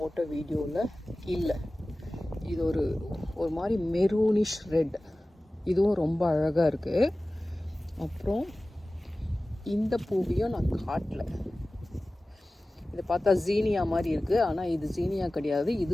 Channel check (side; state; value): both; normal; correlation 0.97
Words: வீடியோவில் இல்லை. இது ஒரு மாதிரி மெரூனிஷ் ரெட், இதுவும் ரொம்ப அழகாக இருக்குது. அப்புறம் இந்த பூவையும் நான் காட்டல. இதை பார்த்தா ஜீனியா மாதிரி இருக்குது, ஆனால் இது ஜீனியா கிடையாது.